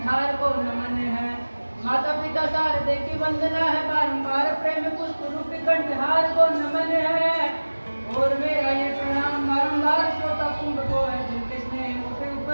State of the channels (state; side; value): inverted; both; correlation -1.00